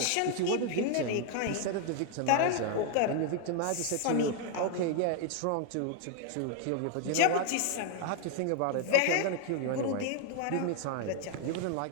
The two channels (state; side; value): different; both; correlation 0.00